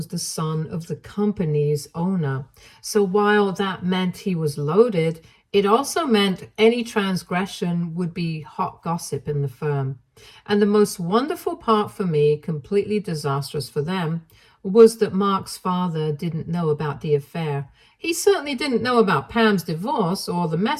the son of the company's owner. So while that meant he was loaded, it also meant any transgression would be hot gossip in the firm. And the most wonderful part for me, completely disastrous for them, was that Mark's father didn't know about the affair. He certainly didn't know about Pam's divorce or the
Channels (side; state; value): both; identical; correlation 1.00